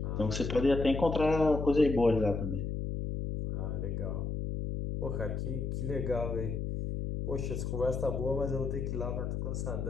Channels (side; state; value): left; noise; hum, 2 dB below the sound